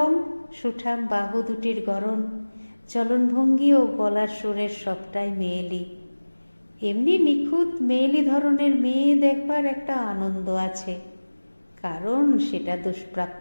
সুঠাম বাহু দুটির গড়ন, চলনভঙ্গি ও গলার সুরের সবটাই মেয়েলি। এমনি নিখুঁত মেয়েলি ধরনের মেয়ে দেখবার একটা আনন্দ আছে, কারণ সেটা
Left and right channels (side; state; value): both; inverted; correlation -1.00